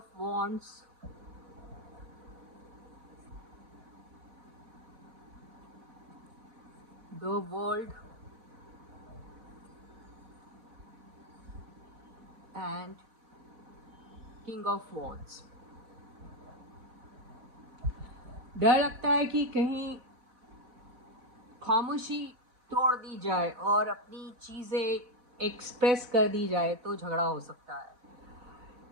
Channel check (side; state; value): left; late; 4.1 ms